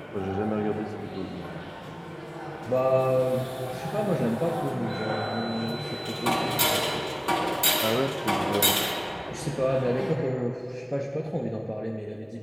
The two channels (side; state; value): both; identical; correlation 1.00